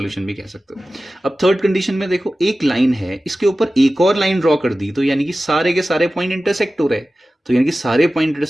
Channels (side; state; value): both; normal; correlation 0.95